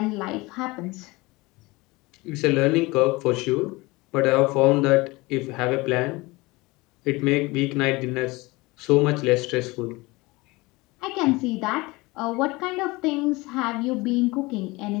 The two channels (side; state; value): right; quieter; 22.8 dB